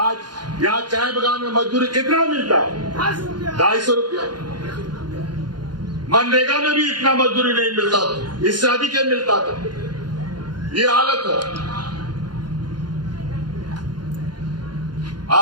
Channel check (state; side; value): late; left; 0.71 ms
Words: यहाँ चाय बगान में मजदूरी कितना मिलता है? 250 रुपया। मनरेगा में भी इतना मजदूरी नहीं मिलता, इससे अधिक मिलता था। ये हालत है।